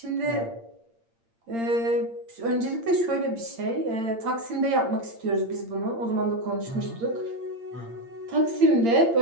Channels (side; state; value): left; late; 8.7 ms